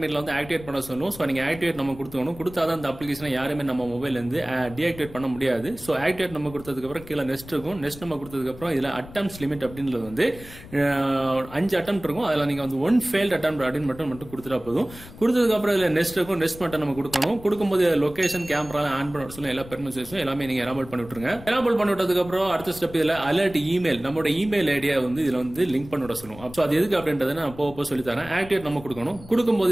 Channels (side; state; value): left; noise; rumble, 17 dB below the sound